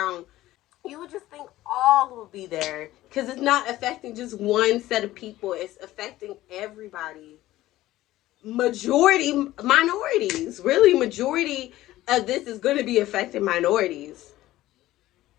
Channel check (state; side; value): quieter; right; 15.8 dB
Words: You would just think all would be there because it's not affecting just one set of people. It's affecting everybody. Majority minorities. Really, majority of this is going to be affecting minorities.